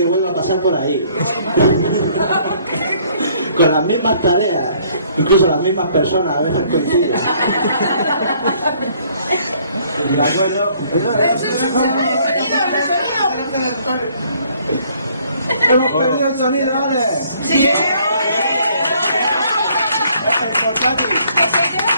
vuelva a pasar por ahí. Con las mismas tareas. Incluso las mismas personas a veces coinciden. ¿De acuerdo? Hemos perdido el sonido, ¿vale? Sí. El portátil.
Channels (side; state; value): both; inverted; correlation -0.62